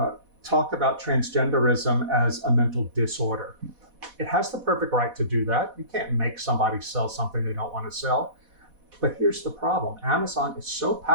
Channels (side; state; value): left; late; 4.1 ms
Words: talk about transgenderism as a mental disorder. It has the perfect right to do that. You can't make somebody sell something they don't want to sell. But here's the problem. Amazon is so